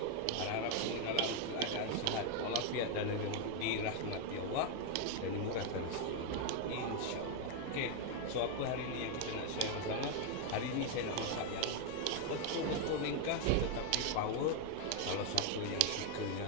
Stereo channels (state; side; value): different; both; correlation 0.01